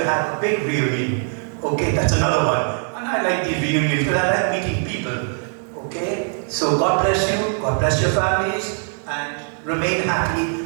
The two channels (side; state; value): left; silent; 56 dB below the other